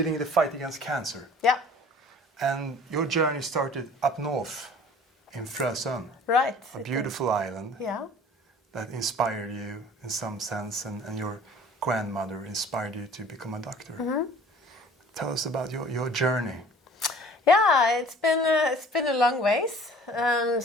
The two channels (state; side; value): normal; both; correlation 0.48